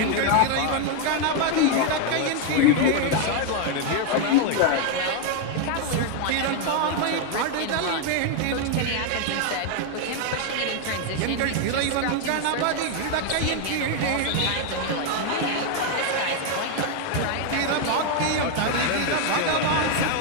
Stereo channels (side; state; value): both; different; correlation 0.01